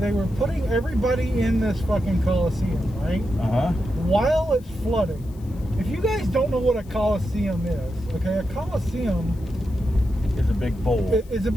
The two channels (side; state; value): left; noise; hiss, 27 dB below the sound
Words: putting everybody in this fucking Coliseum, right? Uh-huh. While it's flooding. If you guys don't know what a Coliseum is, okay, a Coliseum It's a big bowl. It's a